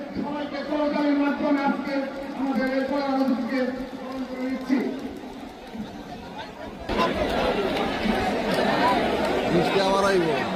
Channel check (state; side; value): identical; both; correlation 1.00